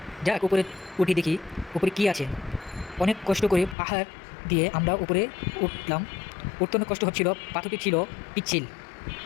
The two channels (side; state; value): right; drops out; at 3.8 s